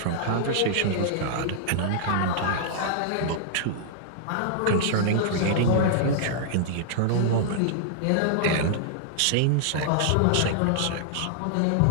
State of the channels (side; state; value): both; different; correlation -0.01